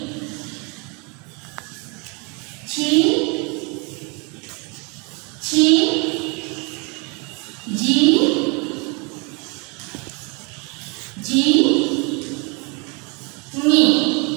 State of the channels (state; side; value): quieter; left; 31.9 dB